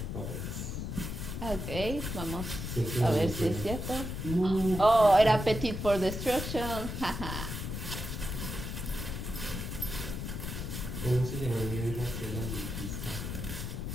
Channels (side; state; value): left; noise; rumble, 5 dB below the sound